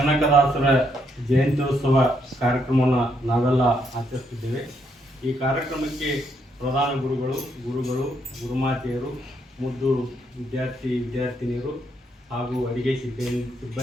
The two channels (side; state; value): both; normal; correlation 0.75